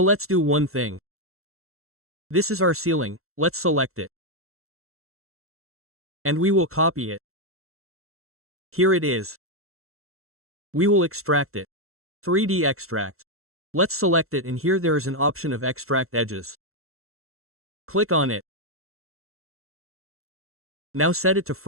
let's do one thing. This is our ceiling, let's select it. And we will copy it. Here it is. We will extract it. 3D extract. Let's select it, and here there is an option of extract edges. Click on it. Now set it to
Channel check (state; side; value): late; left; 0.63 ms